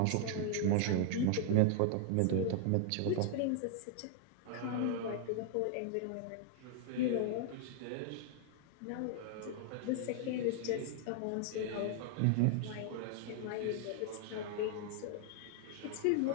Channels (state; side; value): different; both; correlation 0.00